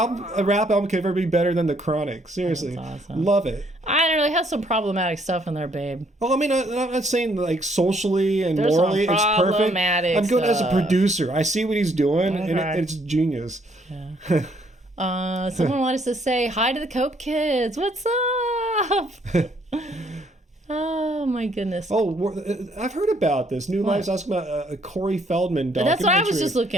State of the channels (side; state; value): both; normal; correlation 0.67